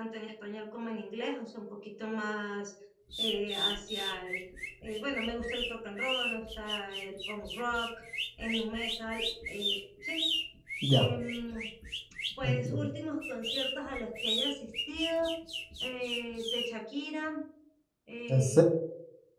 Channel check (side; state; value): both; identical; correlation 1.00